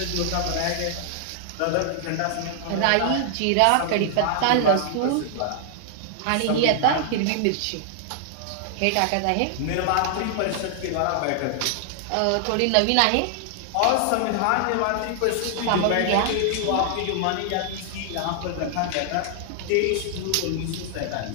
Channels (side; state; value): both; different; correlation -0.01